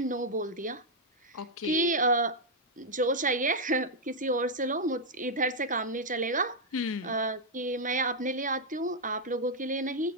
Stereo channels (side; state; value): both; normal; correlation -0.03